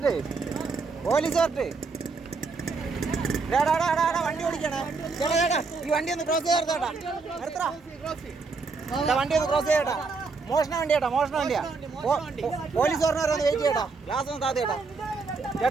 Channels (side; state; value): left; quieter; 4.3 dB